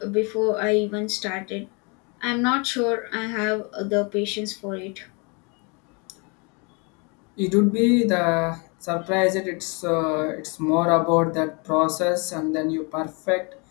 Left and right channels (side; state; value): right; quieter; 32.2 dB